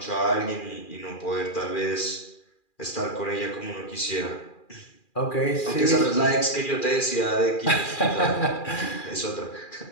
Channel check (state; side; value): late; right; 2.4 ms